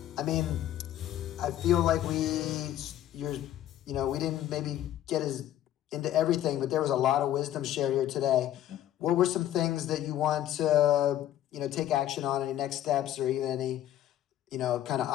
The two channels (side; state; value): right; quieter; 12.3 dB